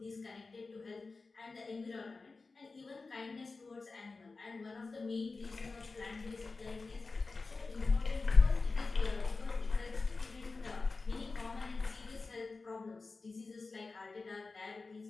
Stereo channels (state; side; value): quieter; right; 3.9 dB